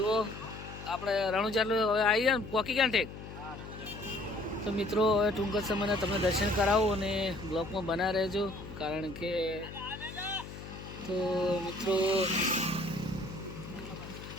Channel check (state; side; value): noise; left; hum, 12 dB below the sound